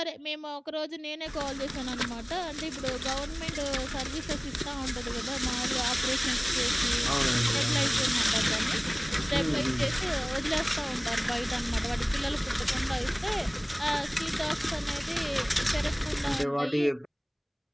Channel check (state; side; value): identical; both; correlation 1.00